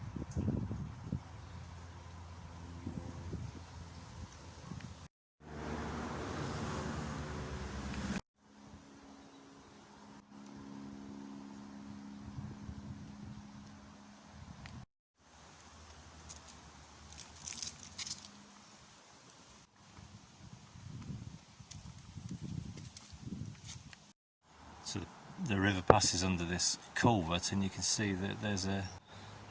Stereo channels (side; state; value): both; identical; correlation 1.00